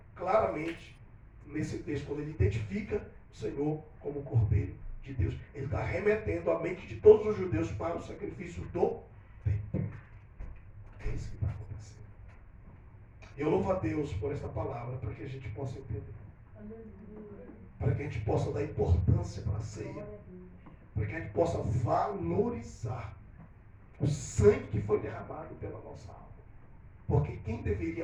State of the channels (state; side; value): identical; both; correlation 1.00